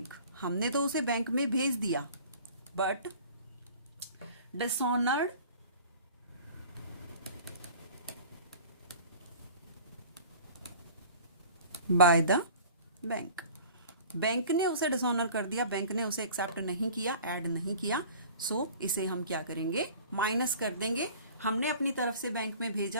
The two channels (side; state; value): both; inverted; correlation -0.45